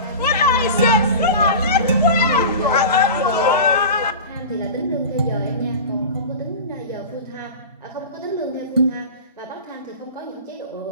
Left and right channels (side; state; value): both; inverted; correlation -0.31